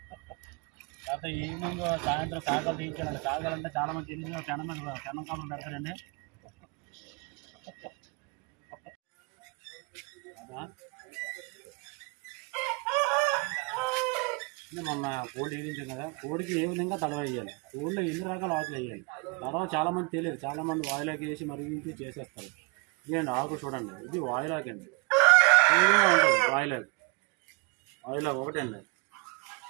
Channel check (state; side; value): quieter; left; 30.5 dB